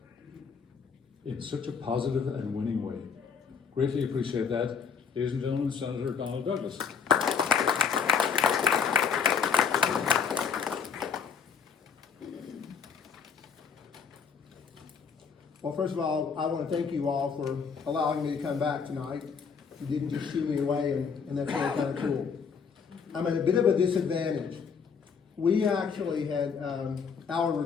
in such a positive and winning way. Greatly appreciate that. Ladies and gentlemen, Senator Donald Douglas. Well, first of all, I want to thank you all for allowing me to come back tonight. You didn't just shoo me away, and that's really kind of cool. I'm at a bit of a disadvantage. We actually had our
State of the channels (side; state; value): right; quieter; 6.3 dB